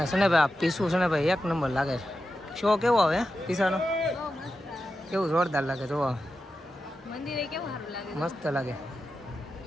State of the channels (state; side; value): normal; both; correlation 0.90